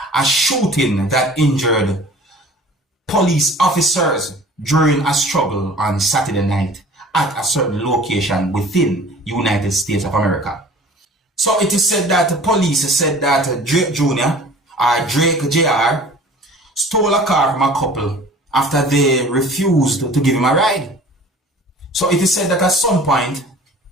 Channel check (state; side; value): normal; both; correlation 0.46